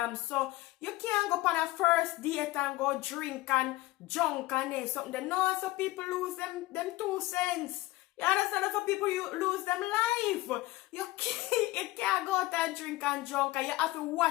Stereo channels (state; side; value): quieter; right; 18.8 dB